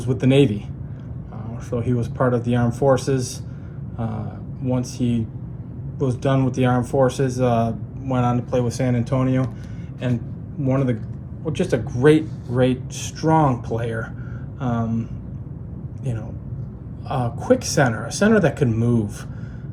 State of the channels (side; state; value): both; identical; correlation 1.00